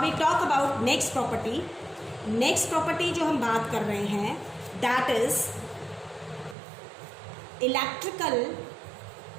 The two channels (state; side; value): drops out; left; at 6.6 s